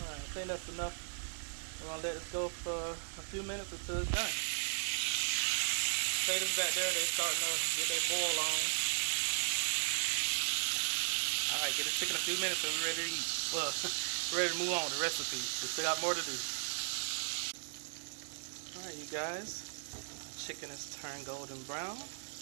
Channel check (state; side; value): silent; left; 53 dB below the other